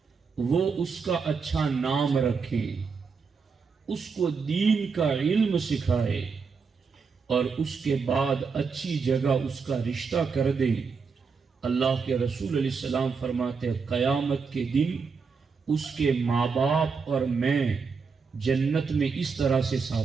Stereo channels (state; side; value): quieter; left; 5.3 dB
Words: وہ اس کا اچھا نام رکھے، اس کو دین کا علم سکھائے اور اس کے بعد اچھی جگہ اس کا رشتہ کر دیں. اللہ کے رسول علیہ السلام فرماتے ہیں قیامت کے دن اس کے ماں باپ اور میں جنت میں اس طرح سے